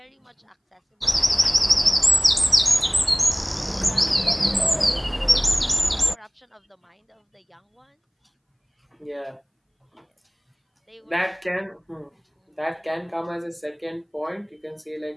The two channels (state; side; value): identical; both; correlation 1.00